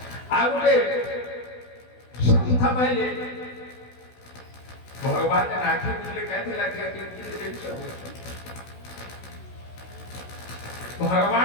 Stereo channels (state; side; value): late; right; 16 ms